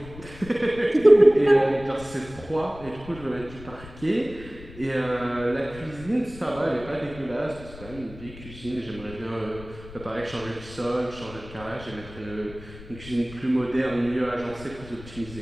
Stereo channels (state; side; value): noise; left; rumble, 16 dB below the sound